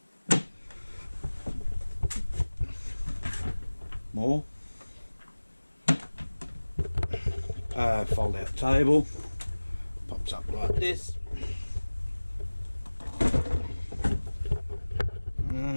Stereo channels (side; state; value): both; inverted; correlation -1.00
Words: More. Fold out table. Pops up like this.